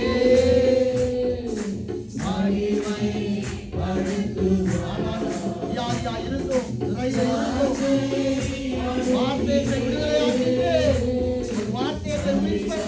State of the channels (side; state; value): both; identical; correlation 1.00